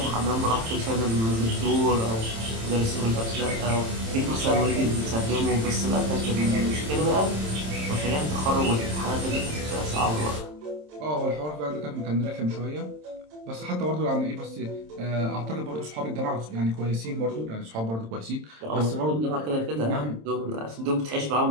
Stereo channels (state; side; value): late; left; 27 ms